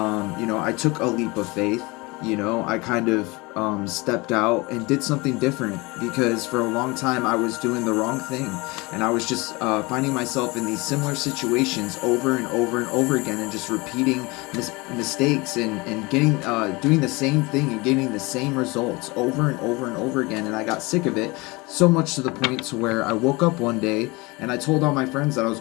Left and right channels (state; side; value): quieter; right; 24.6 dB